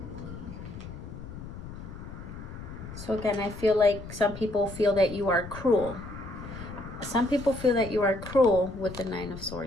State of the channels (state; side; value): noise; left; rumble, 12 dB below the sound